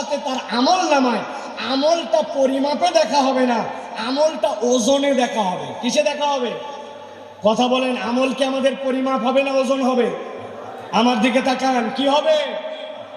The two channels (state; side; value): identical; both; correlation 1.00